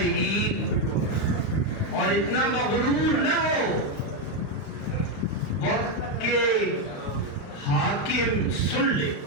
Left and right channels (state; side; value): late; right; 35 ms